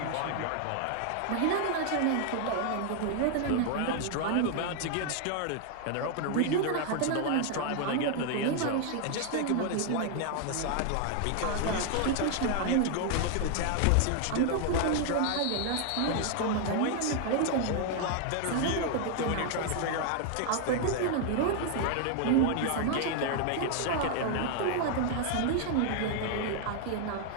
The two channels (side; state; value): both; different; correlation 0.00